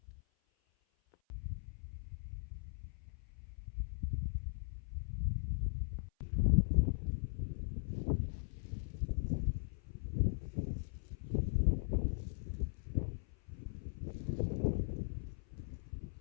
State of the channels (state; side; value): silent; right; 51 dB below the other